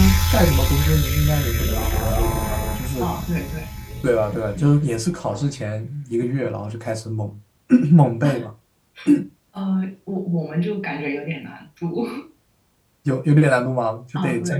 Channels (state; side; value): identical; both; correlation 1.00